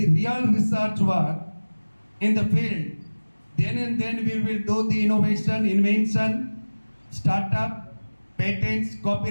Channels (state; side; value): inverted; both; correlation -1.00